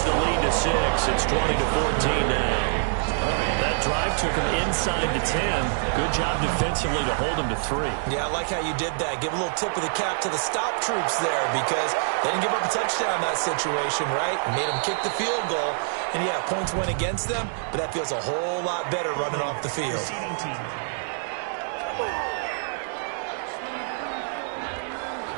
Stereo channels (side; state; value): left; silent; digital silence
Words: the lead to 6. It's 20-14 now. That drive took him inside the 10. Good job defensively to hold him to 3. Yeah, I like how you did that. Give a little tip of the cap to the stop troops there because they didn't give up a touchdown in that situation, right? Made them kick the field goal. And, yeah, points went against them, but that feels a whole lot better running off the field.